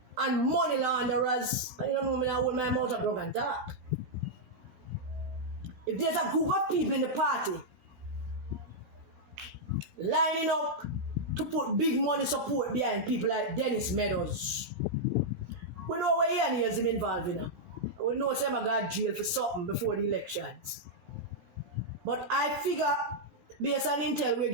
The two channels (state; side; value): late; left; 17 ms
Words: and money launderers. I don't know me, I hold my mouth up drug and talk. If there's a group of people in the party lining up to put big money support behind people like Dennis Meadows, we know where he and he is involved in. We know some got jail for something before the elections. But I figure, based on intel we're